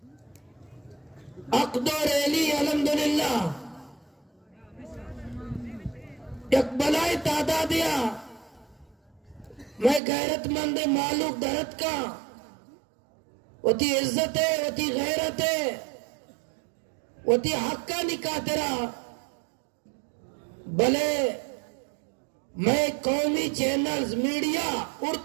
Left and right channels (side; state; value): left; drops out; at 10.0 s